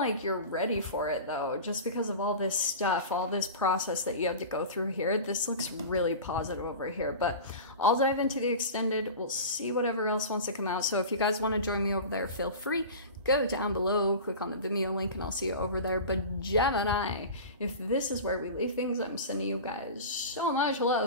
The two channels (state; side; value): inverted; both; correlation -0.33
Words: you're ready for it though, just because of all this stuff, all this process that you have to go through here. This looks really positive over here, but I'll dive into the extended. We'll see whatever else wants to come out. So if you guys want to join me over there, feel free. Go down below, click on the Vimeo link, and I'll see you over there. But Gemini, if this is where we leave things, I'm sending you guys so much